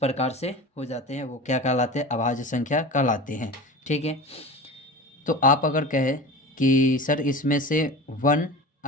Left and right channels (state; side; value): normal; both; correlation 0.33